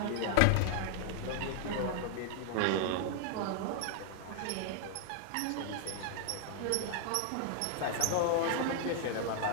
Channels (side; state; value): both; different; correlation -0.01